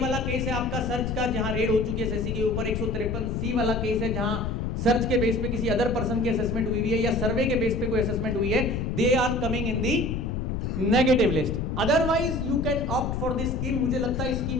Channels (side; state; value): left; noise; rumble, 2 dB below the sound